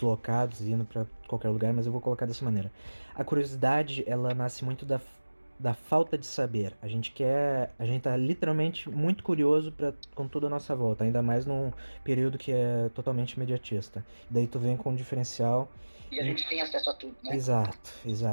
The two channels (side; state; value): both; inverted; correlation -1.00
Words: indo para qualquer lugar, mas eu vou colocar dessa maneira. A curiosidade, ela nasce muito da falta de saber. A gente tá literalmente muito curioso com tudo à nossa volta, ainda mais num período que é totalmente imediatista. Daí tu vem com um diferencial. E a gente tem acesso a tudo, né?